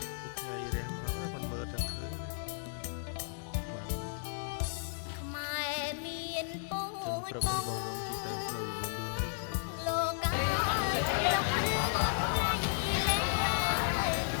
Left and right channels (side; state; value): right; silent; digital silence